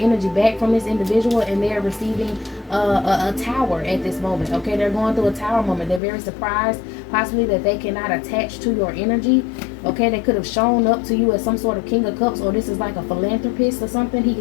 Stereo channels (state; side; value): drops out; right; at 6.0 s